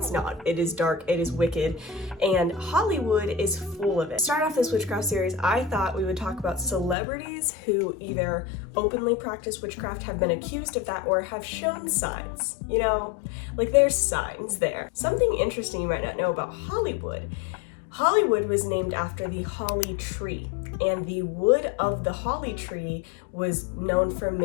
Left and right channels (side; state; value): right; drops out; at 7.0 s